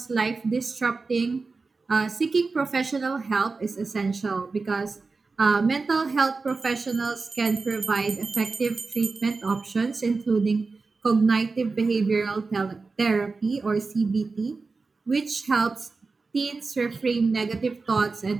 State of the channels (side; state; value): left; quieter; 4.1 dB